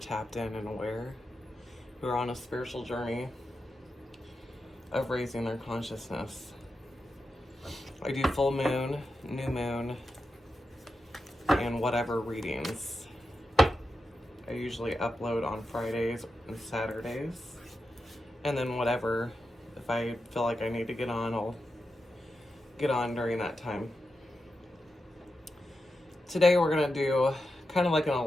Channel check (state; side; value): normal; both; correlation 0.89